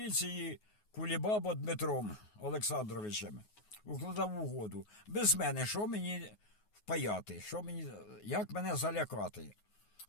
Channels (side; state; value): right; late; 9.5 ms